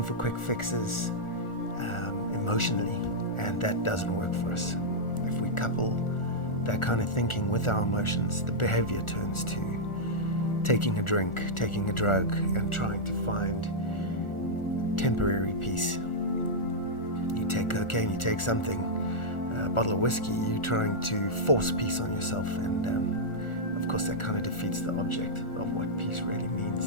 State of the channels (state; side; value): late; right; 1.4 ms